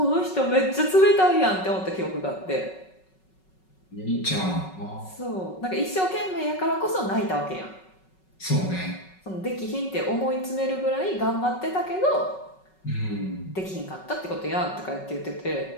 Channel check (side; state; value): right; late; 5.4 ms